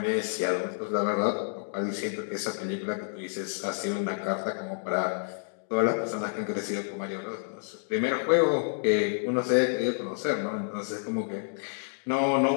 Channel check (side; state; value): right; silent; digital silence